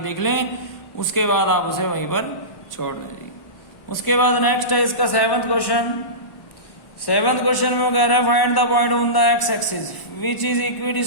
लें, उसके बाद आप उसे वहीं पर छोड़ दें जी। उसके बाद नेक्स्ट है इसका 7th क्वेश्चन। 7th क्वेश्चन में कह रहा है find the point on the x axis which is equi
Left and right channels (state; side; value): late; right; 1.0 ms